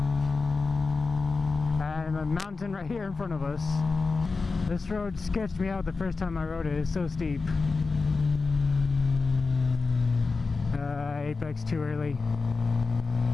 And a mountain right here in front of us. This road sketched me out the first time I rode it. It's so steep. Apex too early.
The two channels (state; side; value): quieter; right; 4.2 dB